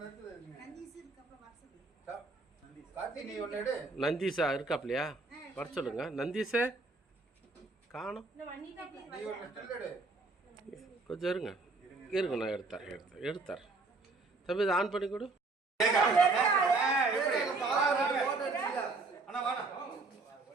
கார்த்தி நீ ஒன்னு எடு. நந்தீஷா இருக்காப்லையா? வர சொல்லுங்க. நந்தீஷே காணும். நீ ஒன்னு ஸ்டில் எடு. கொஞ்சம் இருங்க இருங்க, நான் எடுத்தார். தம்பி இதை ஆன் பண்ணி கொடு. அண்ணா வாடா.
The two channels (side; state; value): left; quieter; 3.7 dB